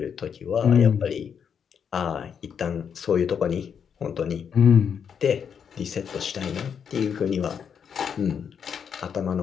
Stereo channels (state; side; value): quieter; right; 7.4 dB